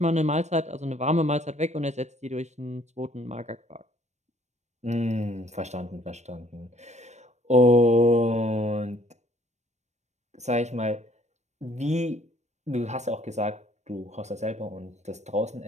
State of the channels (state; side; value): late; left; 0.33 ms